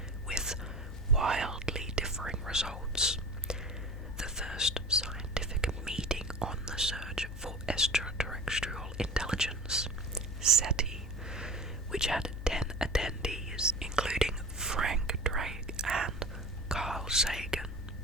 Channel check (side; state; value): both; normal; correlation 0.37